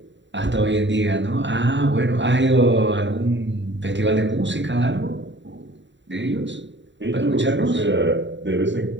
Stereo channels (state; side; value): late; left; 0.53 ms